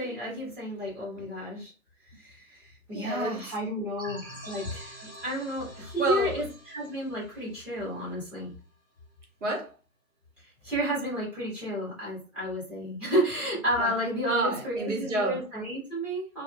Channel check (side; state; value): both; normal; correlation 0.24